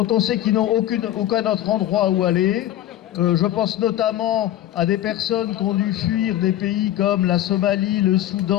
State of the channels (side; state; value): right; quieter; 13.1 dB